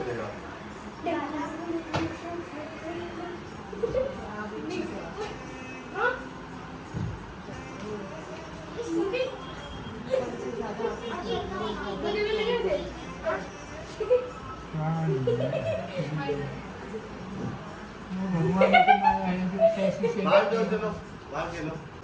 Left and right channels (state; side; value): identical; both; correlation 1.00